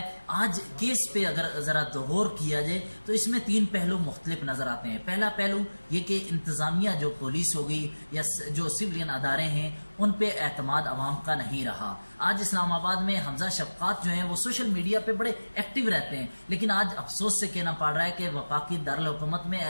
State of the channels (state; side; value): inverted; both; correlation -1.00